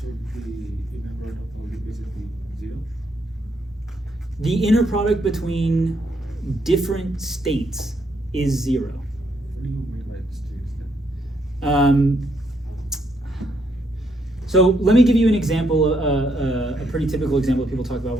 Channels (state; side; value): normal; both; correlation 0.75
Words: the inner product of all the bases be 0? The inner product between different states is 0. What do you mean by states then? So let me give you an example, a pretty typical example that people talk about